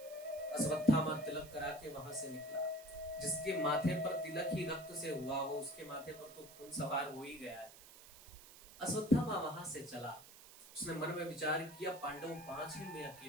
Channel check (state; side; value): noise; right; hiss, 18 dB below the sound